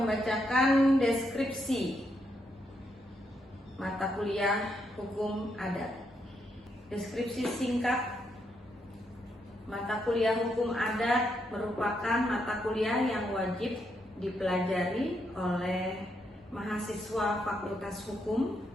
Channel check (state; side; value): normal; both; correlation 0.79